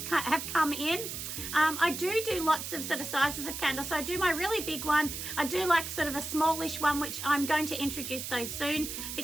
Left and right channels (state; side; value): noise; right; hiss, 6 dB below the sound